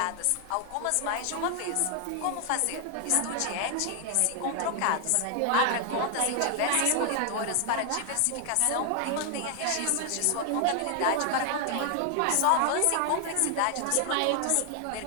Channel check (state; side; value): different; both; correlation 0.00